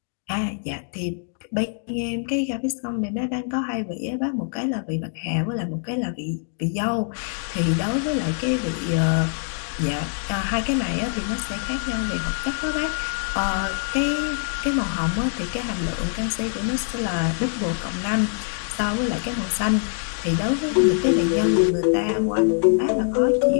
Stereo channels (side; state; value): right; silent; 63 dB below the other